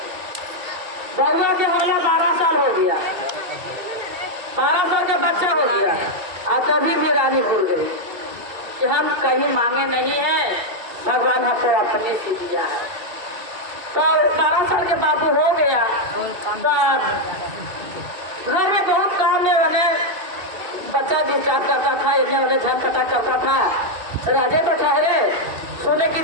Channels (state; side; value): late; left; 2.7 ms